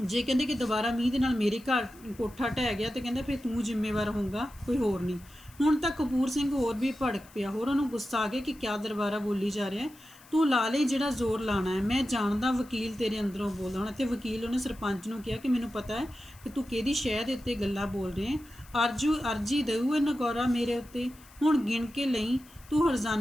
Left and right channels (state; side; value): noise; left; hiss, 24 dB below the sound